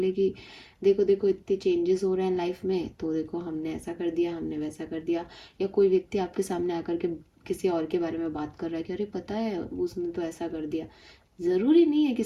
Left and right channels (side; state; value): both; identical; correlation 1.00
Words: लिए कि देखो देखो इतने चेंजेस हो रहे हैं लाइफ में, तो देखो हमने ऐसा कर दिया, हमने वैसा कर दिया। या कोई व्यक्ति आपके सामने आकर के किसी और के बारे में बात कर रहा है कि अरे पता है उसने तो ऐसा कर दिया। ज़रूरी नहीं है कि